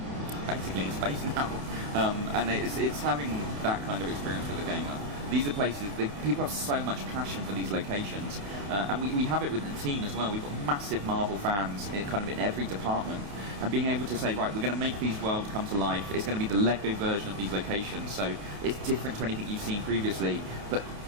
basically in space now. And it's having that kind of experience with a gamer. These are places people have so much passion for these locations, and we have it with the team as well. We've got massive Marvel fans in every department, and being able to say, right, we're going to make these worlds come to life. It's going to be the Lego version of these locations, so it's different to anything you've seen previously, but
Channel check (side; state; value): left; late; 28 ms